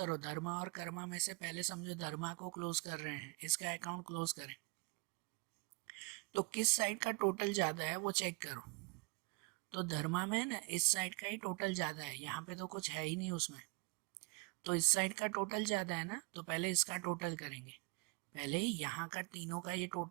धर्मा और कर्मा में से पहले समझो धर्मा को क्लोज कर रहे हैं, इसका अकाउंट क्लोज करें। तो किस साइड का टोटल ज़्यादा है वो चेक करो। तो धर्मा में ना इस साइड का ही टोटल ज़्यादा है, यहाँ पे तो कुछ है ही नहीं उसमें, तो इस साइड का टोटल ज़्यादा है ना, तो पहले इसका टोटल करेंगे। पहले यहाँ का तीनों का ये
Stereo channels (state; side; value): quieter; left; 29.2 dB